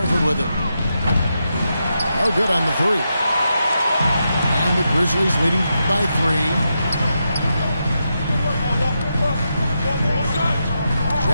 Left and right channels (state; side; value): inverted; both; correlation -0.85